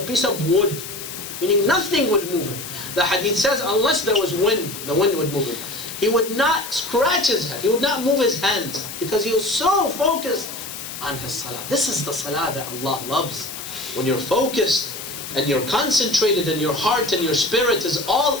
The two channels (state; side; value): noise; left; hiss, 9 dB below the sound